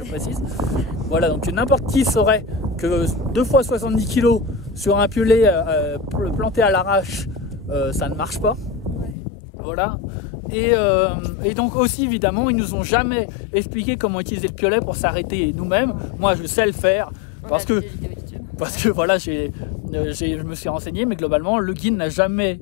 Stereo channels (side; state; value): right; drops out; at 9.2 s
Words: précise. Voilà, donc n'importe qui saurait que 2 fois 70 kg sur un piolet planté à l'arrache, ça ne marche pas. Voilà. Et donc aussi évidemment ils nous ont jamais expliqué comment utiliser le piolet pour s'arrêter nous-mêmes. Moi je sais le faire parce que voilà je me suis renseigné, mais globalement le guide n'a jamais